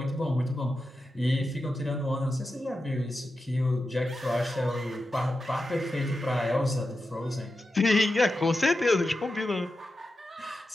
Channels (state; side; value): normal; both; correlation 0.90